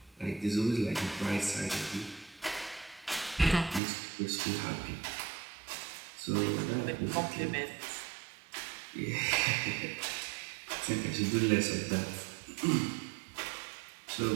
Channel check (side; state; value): left; drops out; at 3.8 s